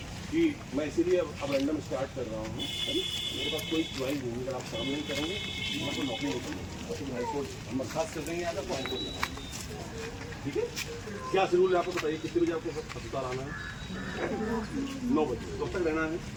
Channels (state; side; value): identical; both; correlation 1.00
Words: कि मैं इसीलिए अब रैंडम स्टार्ट कर रहा हूँ। मेरे पास कोई च्वाइस नहीं, अगर आप काम नहीं करेंगे मैं तो नौकरी नहीं करूँगा, तो हाईकोर्ट हम बर्खास्त कर देंगे आगे तो हाईकोर्ट जाना। ठीक है, क्या शेड्यूल है आपको बताइए, कितने बजे आपको अस्पताल आना है? 9 बजे। कब तक रहना है?